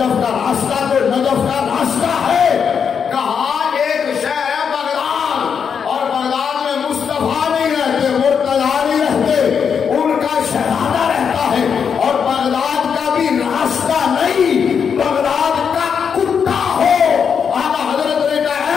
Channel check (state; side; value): quieter; right; 6.8 dB